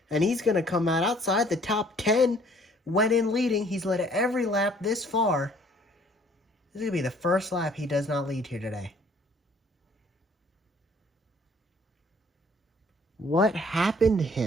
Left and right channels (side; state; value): both; normal; correlation 0.58